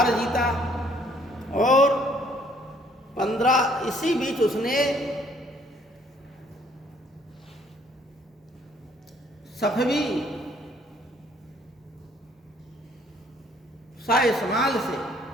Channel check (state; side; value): normal; both; correlation 0.63